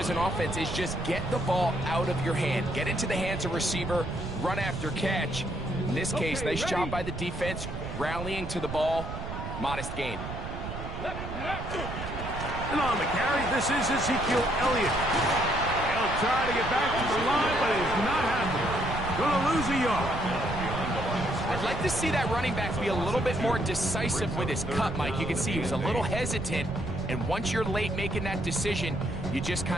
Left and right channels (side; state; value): right; noise; rumble, 7 dB below the sound